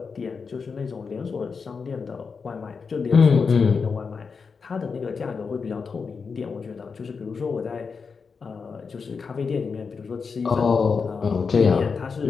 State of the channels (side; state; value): right; quieter; 5.3 dB